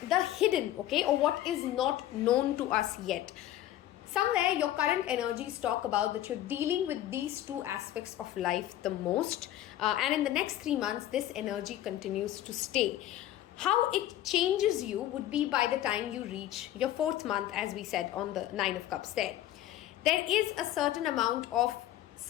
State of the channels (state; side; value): quieter; right; 13.3 dB